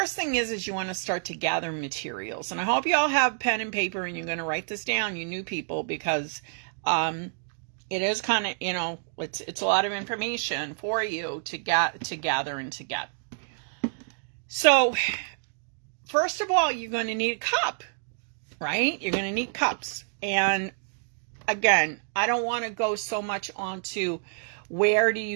thing is you want to start to gather materials. And I hope you all have pen and paper and you're going to write this down, you new people, because it is kind of, it's a lot of information for you to gather and to get. So first of all, you're going to need a cup, right? You're going to need cups. And again, I don't want to go so much onto where do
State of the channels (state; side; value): silent; left; digital silence